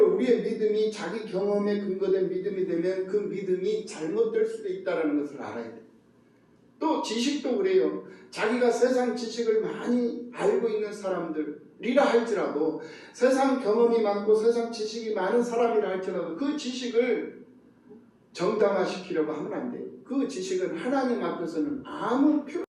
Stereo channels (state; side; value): identical; both; correlation 1.00